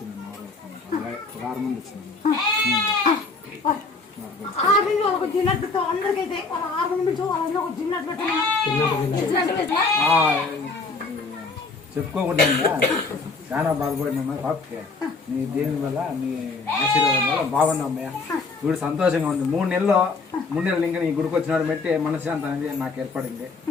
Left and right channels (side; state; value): right; quieter; 4.0 dB